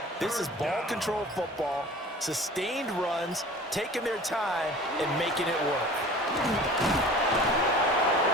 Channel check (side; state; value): both; normal; correlation 0.43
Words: This is ball control football, sustained runs, taking their time, and making it work.